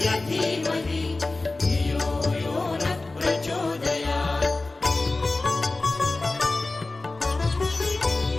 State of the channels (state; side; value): quieter; right; 3.2 dB